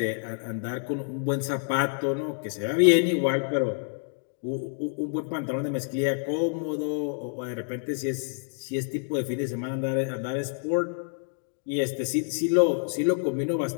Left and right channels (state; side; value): silent; right; digital silence